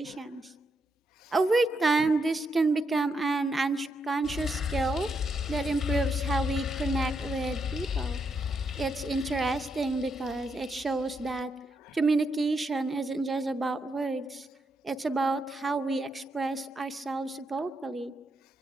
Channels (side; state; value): both; normal; correlation 0.80